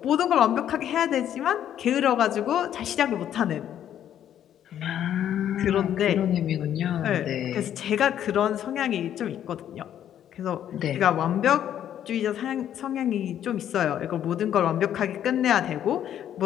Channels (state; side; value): quieter; right; 10.4 dB